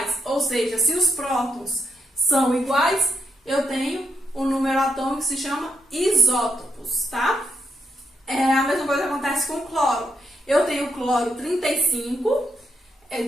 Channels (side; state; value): both; normal; correlation 0.80